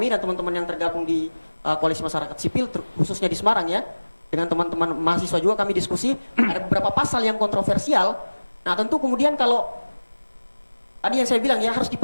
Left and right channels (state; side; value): inverted; both; correlation -1.00